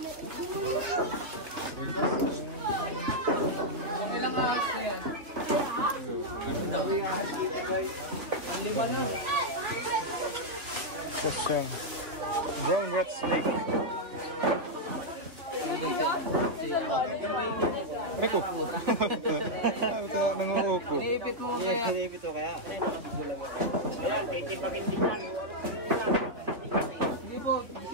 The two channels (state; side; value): late; left; 2.9 ms